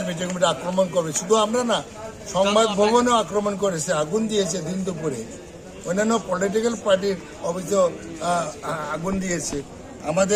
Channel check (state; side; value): identical; both; correlation 1.00